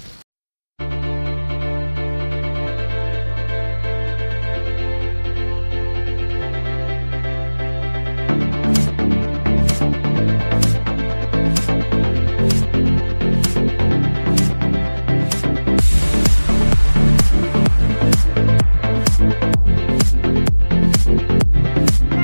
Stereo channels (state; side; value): inverted; both; correlation -1.00